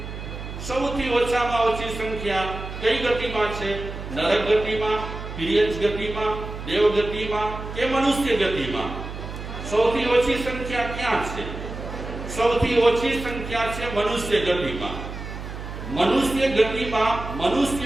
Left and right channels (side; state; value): right; noise; hum, 9 dB below the sound